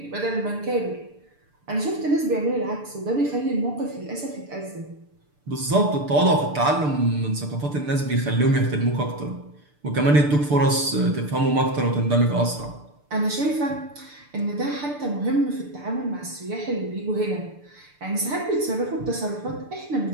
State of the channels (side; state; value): left; late; 6.8 ms